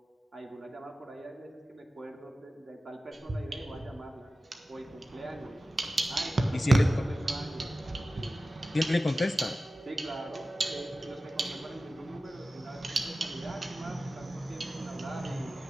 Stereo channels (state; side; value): normal; both; correlation 0.95